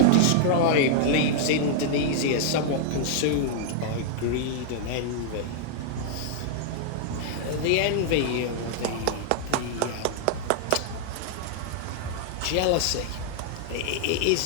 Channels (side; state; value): both; different; correlation -0.01